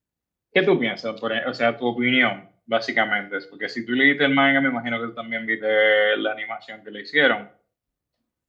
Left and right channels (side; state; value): both; identical; correlation 1.00